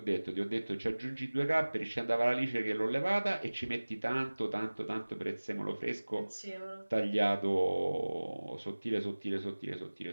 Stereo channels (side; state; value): both; inverted; correlation -1.00